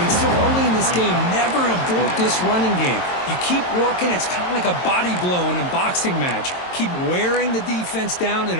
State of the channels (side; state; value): right; late; 22 ms